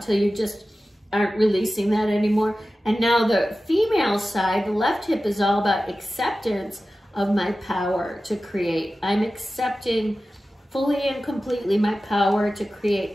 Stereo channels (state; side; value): normal; both; correlation 0.95